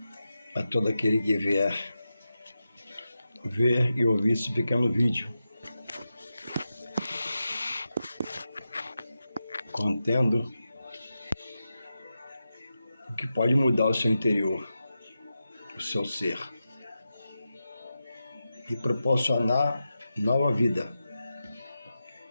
a todo aquele que vier ver e ouvir esse pequeno vídeo, contendo o que pode mudar o seu interior, o seu ser, e proporcionar nova vida,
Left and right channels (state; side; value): inverted; both; correlation -0.90